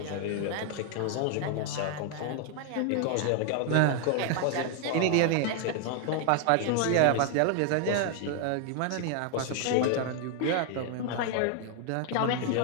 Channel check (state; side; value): different; both; correlation 0.00